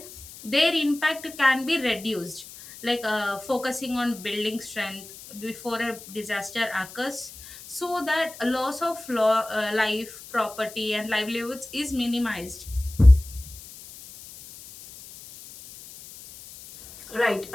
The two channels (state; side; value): noise; left; hiss, 16 dB below the sound